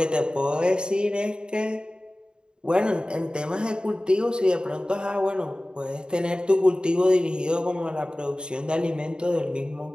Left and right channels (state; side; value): late; left; 0.049 ms